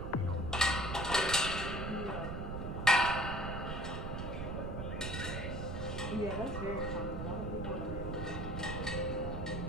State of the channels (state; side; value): noise; right; rumble, 4 dB below the sound